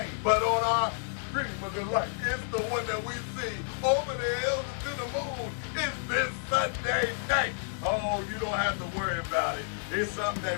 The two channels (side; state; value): right; silent; digital silence